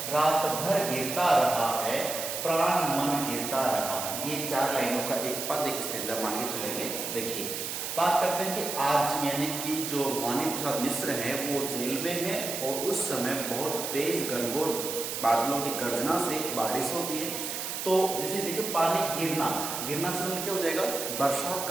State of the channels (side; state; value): right; noise; hiss, 4 dB below the sound